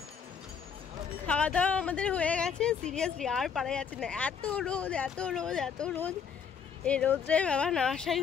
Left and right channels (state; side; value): quieter; right; 6.7 dB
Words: খাওয়া দাওয়া আমাদের হয়ে গেছে। সিরিয়াসলি আর পারা যাচ্ছে না, এত রোদ এত রোদ এত রোদ। এই রোদে বাবা না আসাই